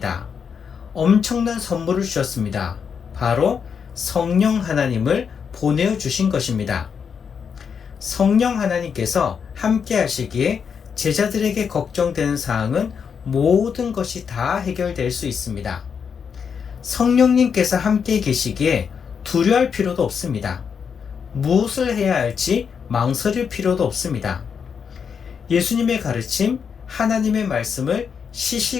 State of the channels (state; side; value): quieter; right; 6.7 dB